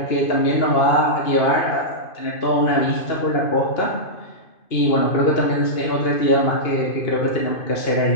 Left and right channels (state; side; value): late; right; 2.5 ms